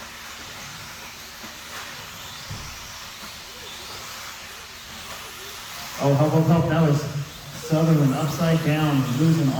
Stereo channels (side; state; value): both; identical; correlation 1.00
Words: Oh, help. That was Sutherland upside down, losing